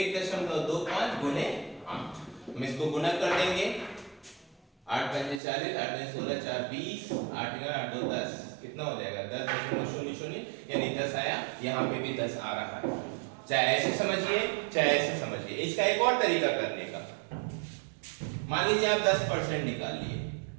गुणे 8। हम इसको गुना कर देंगे, 8 पंजे 40, 8 दूनी 16, 4 20, 8 8 2 10 कितना हो जाएगा 10.00 यानी 10 आया। यहाँ पे भी 10 आ रहा है। चाहे ऐसे समझिए चाहे ऐसे समझिए। इसका एक और तरीका करने का, मान लीजिए आप 10% निकाल लिए,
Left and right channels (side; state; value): left; drops out; at 5.4 s